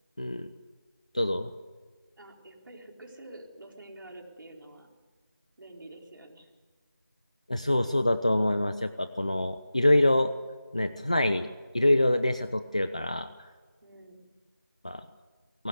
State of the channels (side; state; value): both; inverted; correlation -0.94